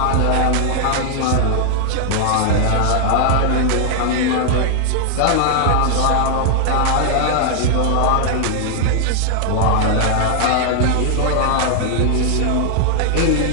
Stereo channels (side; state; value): both; different; correlation 0.00